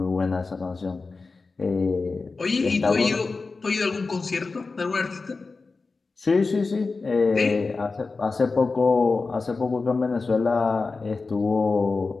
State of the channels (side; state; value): right; quieter; 4.0 dB